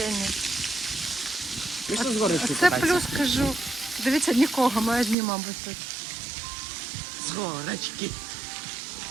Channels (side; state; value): left; drops out; at 5.2 s